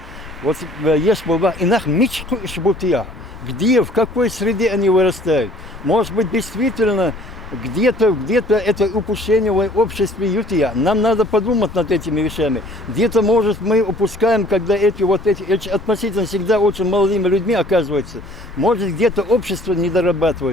Вот есть было инах мечку и шбутия. Где, в какой среде они вырастают? Может быть, действительно, где-то это упущение в обществе ютия. Нам надо подумать над этими вещами. Где-то, может, мы упускаем, когда эти относительно всегда очень молодыми людьми оказываются. Может, где-то общество не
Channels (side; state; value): both; normal; correlation 0.55